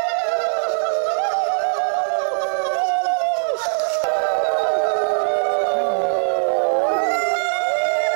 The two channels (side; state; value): left; silent; 65 dB below the other